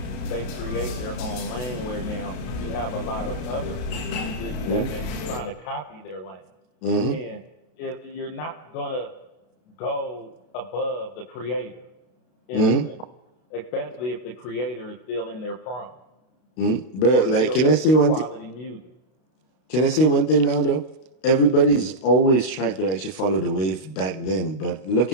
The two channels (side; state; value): right; late; 32 ms